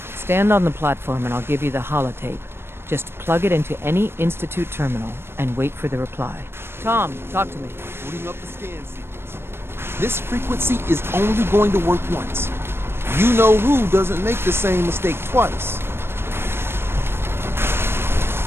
Stand on the platform and I'll give you the holotape. Just plug it into any Institute terminal and wait for the reply. Tom, talk to me. Booting up the scan sequence. This frequency is only going to work once. You know who doesn't make the same mistake twice.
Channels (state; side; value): late; left; 0.12 ms